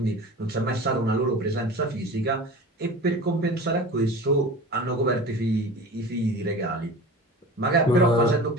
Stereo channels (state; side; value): normal; both; correlation 0.35